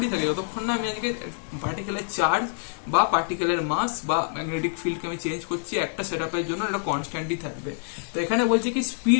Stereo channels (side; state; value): right; silent; 56 dB below the other